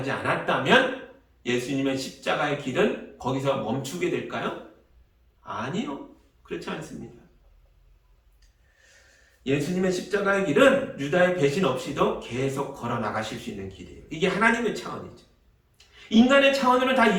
않았다면 예수님의 십자가의 길은 거기서 멈추게 될까요? 아니요. 그렇지 않습니다. 예수님의 십자가의 길은 유다의 배신 없이도 계속 걸어 나가실 수 있는 길이에요. 이게 하나님의 차원이죠. 인간의 차원으로는 다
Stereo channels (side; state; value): both; identical; correlation 1.00